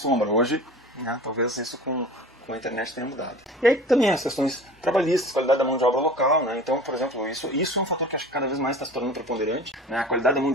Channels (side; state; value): both; normal; correlation 0.40